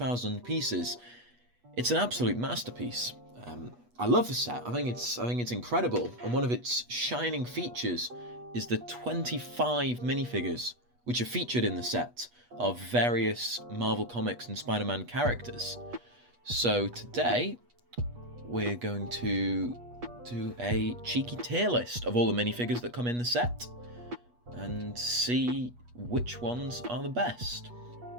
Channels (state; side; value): late; left; 8.3 ms